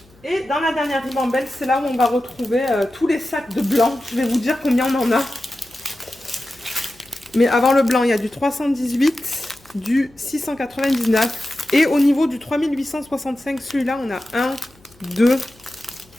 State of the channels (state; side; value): noise; left; hum, 29 dB below the sound